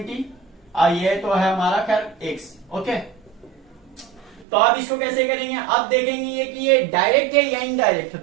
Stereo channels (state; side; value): drops out; left; at 4.5 s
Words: ये तो है हमारा खैर एक्स। ओके, तो अब इसको कैसे करेंगे? अब देखेंगे कि ये डायरेक्ट है या इनडायरेक्ट है।